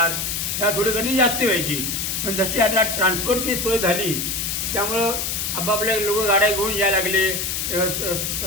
ह्या थोडी गर्दी जास्त व्हायची. पण जशी आता ट्रान्सपोर्टची सोय झाली त्यामुळं आपापल्या लोक गाड्या घेऊन यायला लागले.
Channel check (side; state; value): left; noise; hiss, 1 dB below the sound